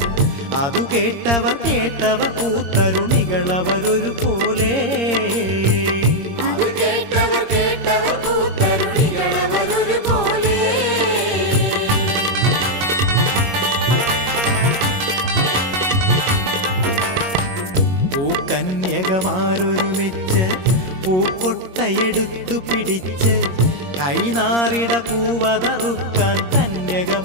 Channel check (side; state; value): left; late; 21 ms